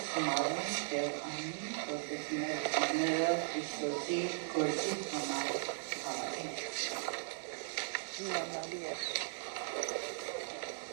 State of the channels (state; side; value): silent; left; digital silence